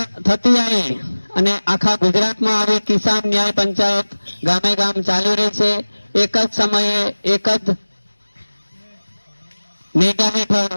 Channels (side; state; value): both; inverted; correlation -1.00